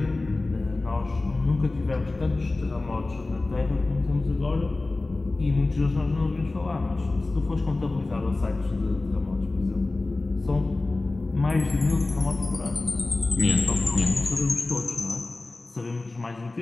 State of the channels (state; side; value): quieter; right; 3.2 dB